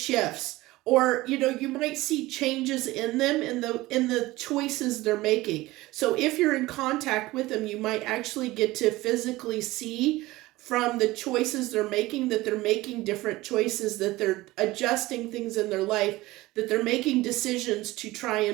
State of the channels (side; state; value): left; quieter; 18.9 dB